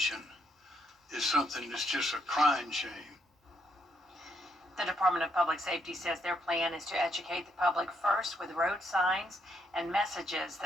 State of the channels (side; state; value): both; normal; correlation 0.75